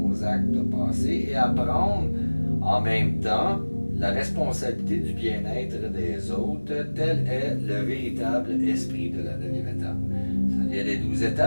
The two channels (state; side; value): inverted; both; correlation -1.00